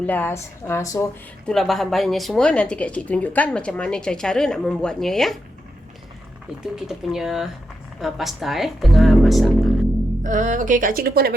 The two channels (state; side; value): normal; both; correlation 0.85